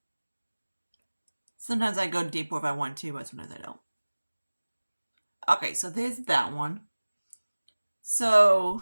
Sometimes I go deeper if I want to, but sometimes I don't. Okay, so there's that one. So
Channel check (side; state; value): both; inverted; correlation -1.00